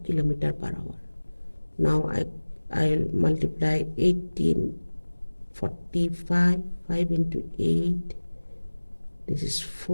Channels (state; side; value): inverted; both; correlation -1.00